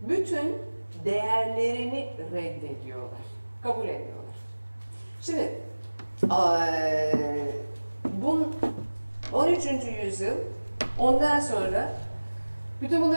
değerlerini reddediyorlar. Kabul etmiyorlar. Şimdi 13. yüzyıl ondan sonra Bütün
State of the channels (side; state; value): both; inverted; correlation -1.00